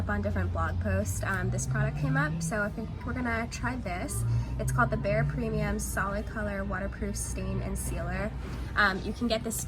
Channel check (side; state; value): both; identical; correlation 1.00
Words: on different blog posts, this product came up, so I think we're gonna try this. It's called the Bare Premium Solid Color Waterproof Stain and Sealer. You can get this